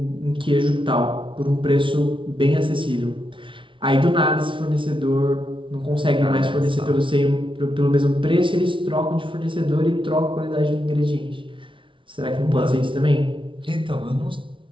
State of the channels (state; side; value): late; left; 0.25 ms